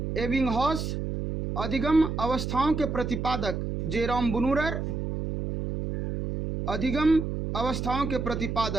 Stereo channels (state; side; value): noise; right; hum, 3 dB below the sound